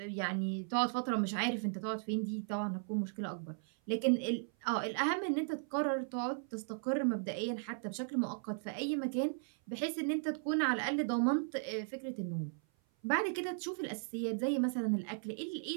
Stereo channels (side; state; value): left; silent; 53 dB below the other